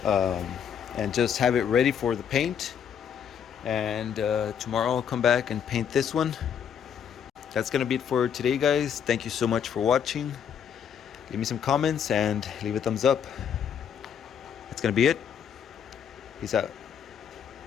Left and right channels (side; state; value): right; quieter; 8.1 dB